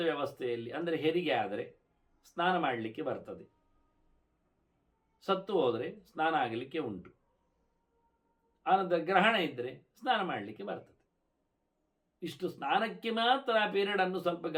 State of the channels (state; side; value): identical; both; correlation 1.00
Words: ವ್ಯವಸ್ಥೆಯಲ್ಲಿ, ಅಂದರೆ ಹೆರಿಗೆ ಆದರೆ ಸ್ನಾನ ಮಾಡಲಿಕ್ಕೆ ಬರ್ತದೆ, ಸತ್ತು ಹೋದರೆ ಸ್ನಾನ ಆಗಲಿಕ್ಕೆ ಉಂಟು, ಆನಂತರ ಗ್ರಹಣ ಇದ್ದರೆ ಸ್ನಾನ ಮಾಡಲಿಕ್ಕೆ ಬರ್ತದೆ. ಇಷ್ಟು ಸ್ನಾನಕ್ಕೆ ಮಾತ್ರ ಆ ಪೀರಿಯಡನ್ನು ಸ್ವಲ್ಪ